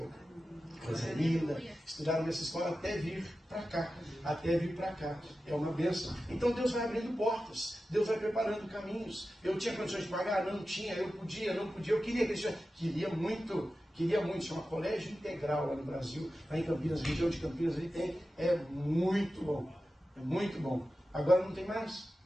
Coisa linda. Estudaram nessa escola até vir para cá. É uma bênção. Então Deus vai abrindo portas. Deus vai preparando caminhos. Eu tinha condições de pagar? Não tinha. Eu podia, não podia. Eu queria que queria muito. Chama Colégio Integral lá no Brasil. Lá em Campinas, região de Campinas, ali tem. É muito bom. É muito bom. Agora não tem mais.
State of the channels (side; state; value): both; normal; correlation 0.93